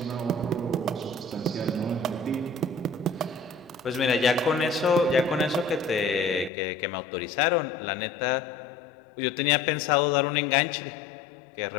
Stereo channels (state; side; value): drops out; right; at 6.5 s